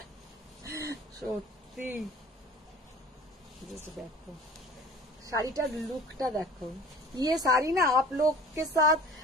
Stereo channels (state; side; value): normal; both; correlation 0.44